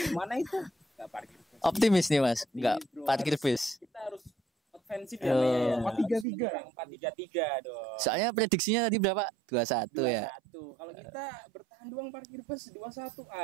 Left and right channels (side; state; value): left; drops out; at 6.2 s